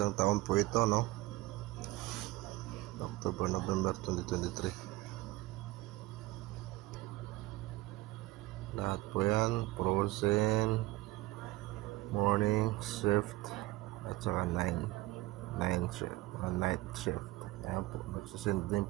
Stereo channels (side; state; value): left; quieter; 19.4 dB